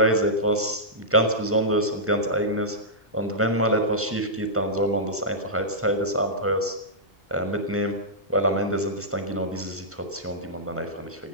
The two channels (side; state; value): both; normal; correlation -0.13